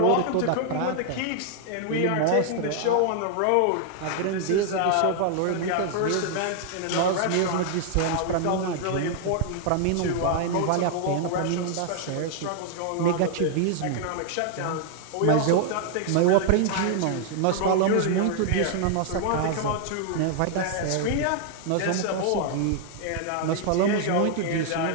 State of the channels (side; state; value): both; different; correlation 0.00